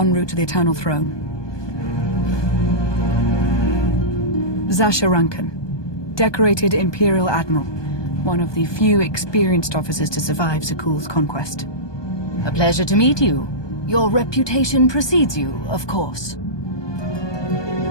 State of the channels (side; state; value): right; late; 1.2 ms